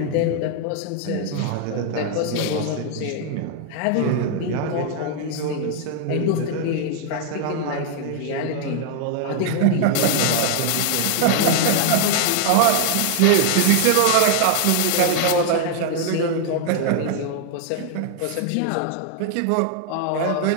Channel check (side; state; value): both; different; correlation 0.00